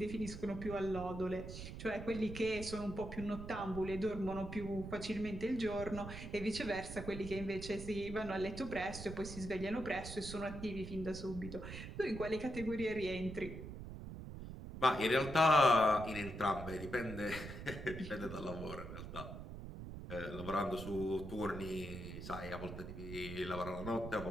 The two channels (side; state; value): right; noise; rumble, 9 dB below the sound